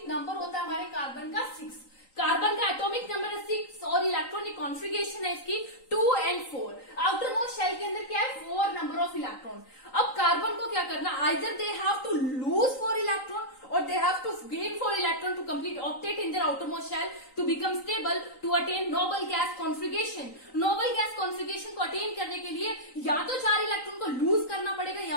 नंबर होता है हमारे कार्बन का 6। कार्बन का एटॉमिक नंबर है 6 और इलेक्ट्रॉनिक कॉन्फ़िगरेशन है इसकी 2 and 4। आउटर मोस्ट शेल के अंदर क्या है, 4 नंबर ऑफ इलेक्ट्रॉन। अब कार्बन को क्या करना, either they have to lose 4 electron or they have to gain 4 electron to complete octet in their outermost shell to become stable to attain noble gas configuration। noble gas configuration को attain करने के लिए या तो 4 electron को loose करना पड़ेगा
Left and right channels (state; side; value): late; right; 3.9 ms